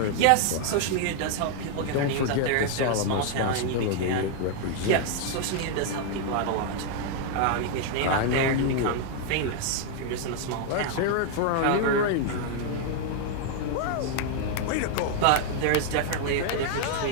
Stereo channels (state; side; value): different; both; correlation 0.00